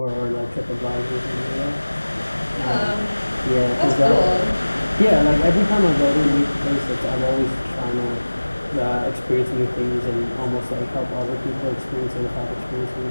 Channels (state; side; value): inverted; both; correlation -1.00